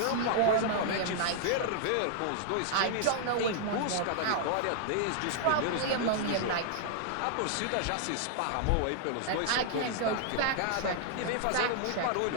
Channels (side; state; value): both; different; correlation -0.01